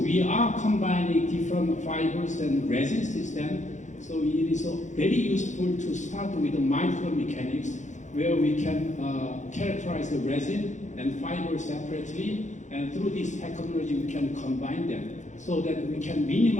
are combining different fibers and resin system, so it is very useful to start with the micromechanics, where we can characterize the resin and fiber separately, and through this technology we can combine them so that we can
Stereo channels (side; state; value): right; late; 0.35 ms